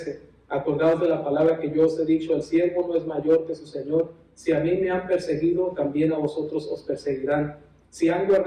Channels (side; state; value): both; identical; correlation 1.00